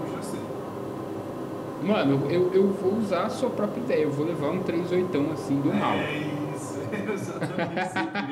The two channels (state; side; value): identical; both; correlation 1.00